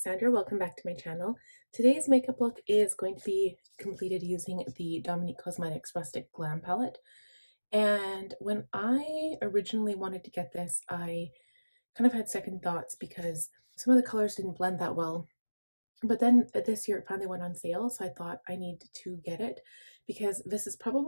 Sandra. Welcome back to my channel. Today's makeup look is going to be completed using the Dominique Cosmetics Rustic Glam palette. And when I originally wanted to get this, I kind of had second thoughts because some of the colors didn't blend that well. But then this year it finally went on sale, so I thought I need to get it because this is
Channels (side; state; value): both; inverted; correlation -1.00